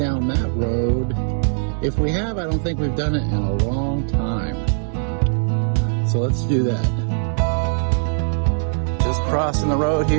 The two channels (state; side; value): silent; left; digital silence